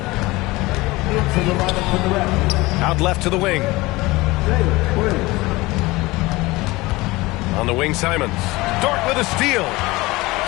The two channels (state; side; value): quieter; right; 21.1 dB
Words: Out left to the wing. On the wing, Simons. Dort with a steal.